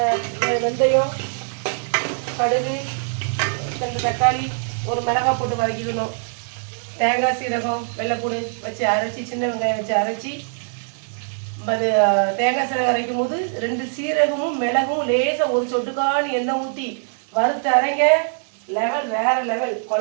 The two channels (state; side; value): silent; left; digital silence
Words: வெந்தயம், கடுகு, 2 தக்காளி, ஒரு மிளகாய் போட்டு வதக்கிக்கணும். தேங்காய், சீரகம், வெள்ளைப்பூடு வச்சு அரைச்சி, சின்ன வெங்காயம் வச்சு அரைச்சி, அது தேங்காய் சீரகம் அரைக்கும் போது 2 சீரகமும் மிளகும் லேசாக ஒரு சொட்டுக்கான எண்ணெய் ஊற்றி வறுத்து அரைங்க. லெவல் வேற லெவல்,